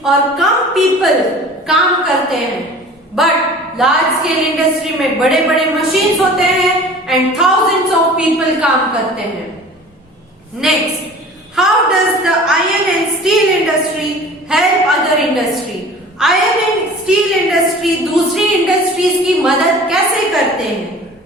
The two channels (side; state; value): both; normal; correlation 0.43